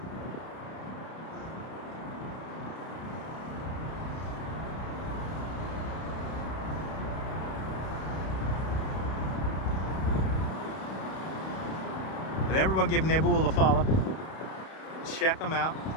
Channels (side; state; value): right; late; 31 ms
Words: But everyone give Nebul a follow. Check them out.